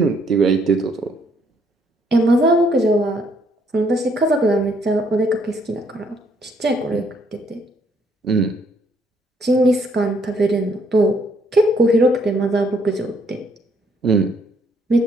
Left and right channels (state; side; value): normal; both; correlation 0.68